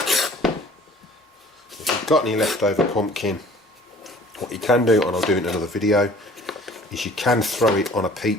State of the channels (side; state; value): both; normal; correlation 0.50